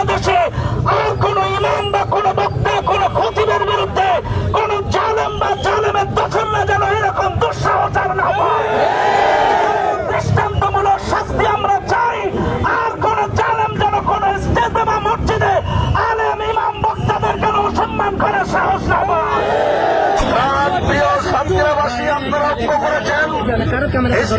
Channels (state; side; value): identical; both; correlation 1.00